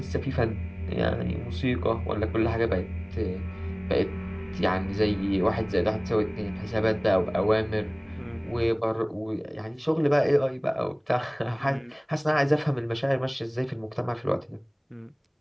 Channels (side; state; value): both; identical; correlation 1.00